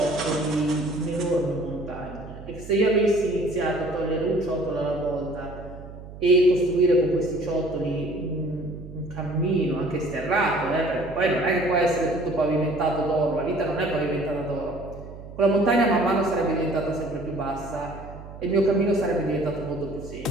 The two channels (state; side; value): noise; right; hum, 14 dB below the sound